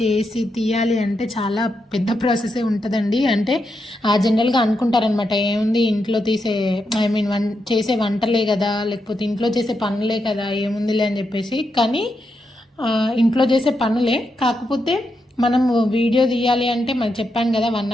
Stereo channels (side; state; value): both; normal; correlation 0.84